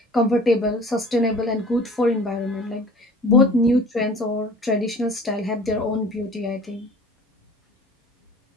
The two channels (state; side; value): normal; both; correlation 0.46